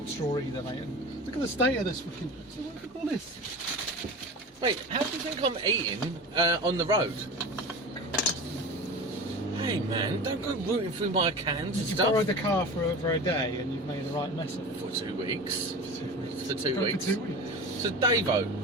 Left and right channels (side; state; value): both; normal; correlation 0.32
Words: straw either, mate. And look at the state of this fucking... So what do you call this? Mate, how do you think I'm eating on the road? Hey man, don't go rooting through my cans and You stuff. borrowed the car for over a day and you've made the right mess of it. For 2 weeks. For 2 weeks. For 2 weeks. For 2 weeks. So Davo,